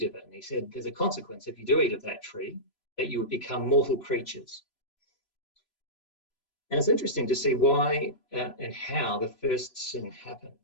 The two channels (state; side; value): late; right; 3.0 ms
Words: of it. And he said, there's a consequence if you do eat of that tree, that you would become mortal creatures. And it's interesting to see why and how the first sin